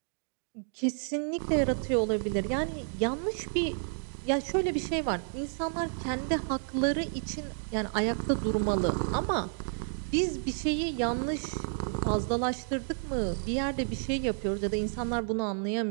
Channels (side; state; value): left; silent; digital silence